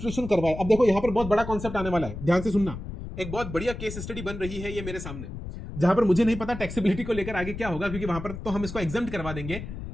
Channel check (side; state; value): left; noise; rumble, 9 dB below the sound